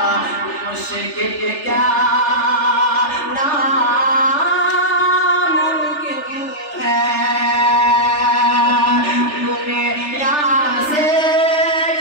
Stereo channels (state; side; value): late; right; 3.3 ms